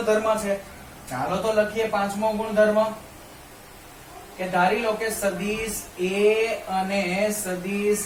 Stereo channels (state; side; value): identical; both; correlation 1.00